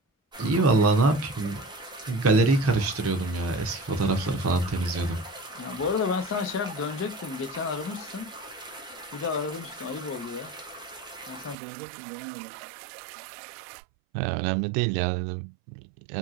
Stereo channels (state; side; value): drops out; left; at 11.6 s